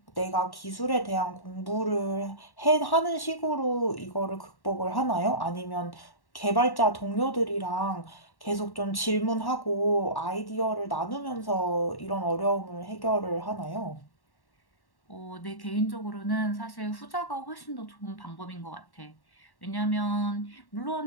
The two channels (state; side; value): late; right; 1.1 ms